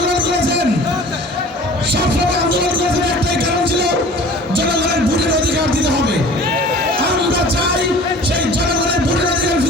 করেছেন, সবসময় আন্দোলন করেছেন, একটাই কারণ ছিল জনগণের ভোটের অধিকার দিতে হবে। আমরা চাই সেই জনগণের ভোটের অধিকার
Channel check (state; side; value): normal; both; correlation 0.45